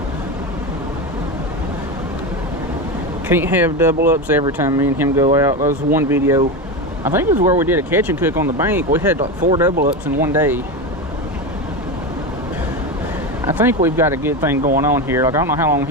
Can't have double ups every time me and him go out. That was one video, I think it was where we did a catch and cook on the bank. We had like 4 double ups in one day. I think we've got a good thing going on here. Like, I don't know how long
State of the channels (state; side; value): normal; both; correlation 0.19